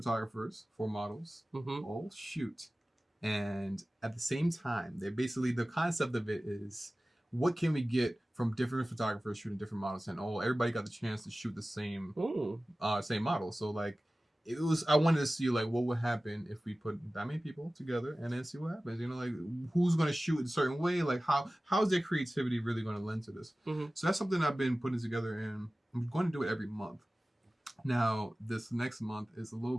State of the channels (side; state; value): both; normal; correlation 0.97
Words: 4 models. All shoot. And at the same time, they basically the concept of it is what can we get from different photographers shooting different models, and everybody got the chance to shoot the same same model. So like I wanted to see like what would happen if we put that many people together and then see what happens. You know, like who's gonna shoot in a certain way, like how's their creativity really gonna lend to this? So that's something I've been putting together, and I'm going to do it every month. Now this next month is a